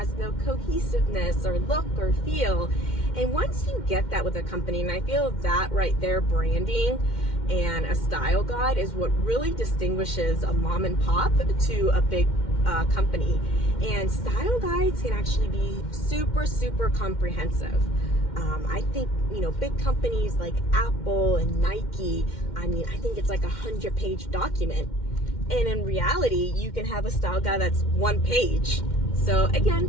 no cohesiveness or look or feel. And once you get that with a company, and I feel that right there, branding and a style guide is what really distinguishes a mom and pop to a big company. And style guides can actually be super comprehensive. I think, big companies like Apple and Nike, I think it's like 100-page document. And in reality, you can have a style guide that's 1 page. So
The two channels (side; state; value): right; late; 2.1 ms